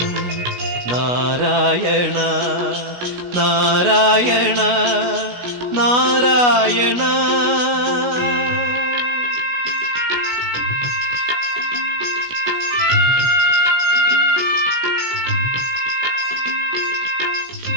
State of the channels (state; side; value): late; left; 16 ms